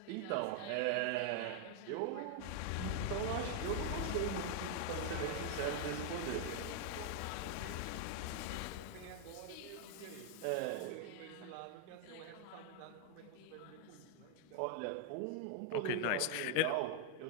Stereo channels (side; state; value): both; different; correlation 0.00